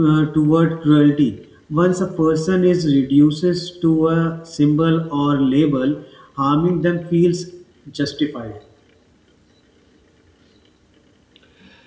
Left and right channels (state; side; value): identical; both; correlation 1.00